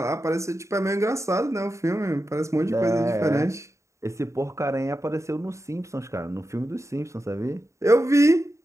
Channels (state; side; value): late; left; 0.14 ms